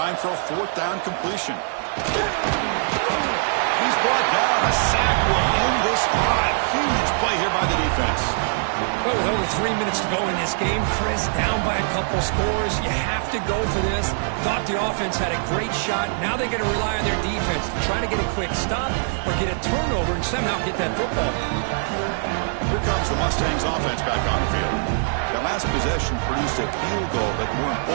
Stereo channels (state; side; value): silent; left; digital silence